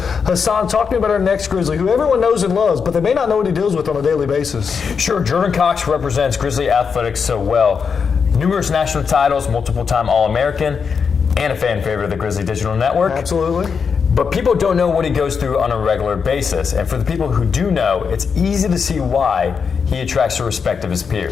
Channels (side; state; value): right; quieter; 6.0 dB